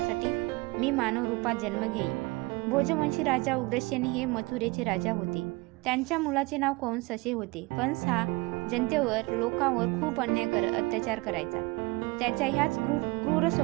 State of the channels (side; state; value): left; quieter; 24.3 dB